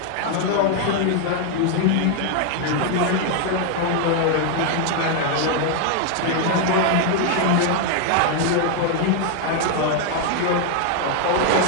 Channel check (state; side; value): different; both; correlation 0.00